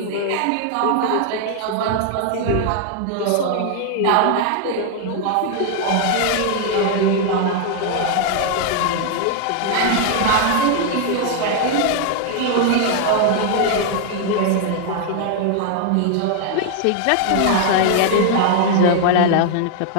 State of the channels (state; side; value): different; both; correlation 0.00